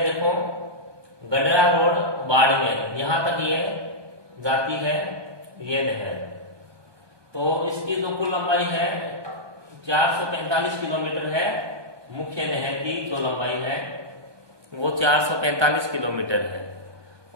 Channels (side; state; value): left; late; 1.2 ms